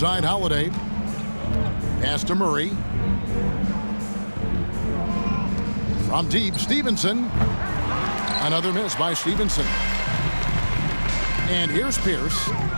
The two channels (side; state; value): both; inverted; correlation -1.00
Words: Holiday. Pass to Murray. From deep, Stevenson. Another miss by Stevenson. And here's Pierce.